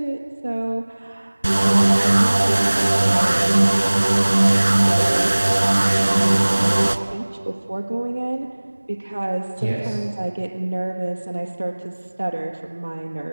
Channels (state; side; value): inverted; both; correlation -1.00